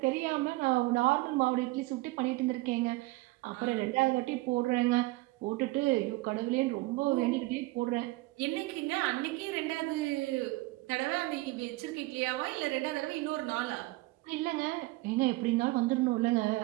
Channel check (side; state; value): left; quieter; 21.0 dB